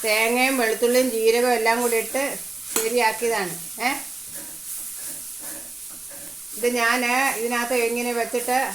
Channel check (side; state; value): left; quieter; 3.2 dB